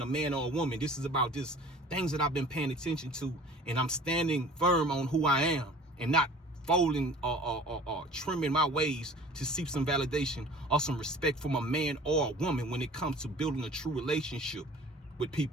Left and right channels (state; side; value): normal; both; correlation 0.46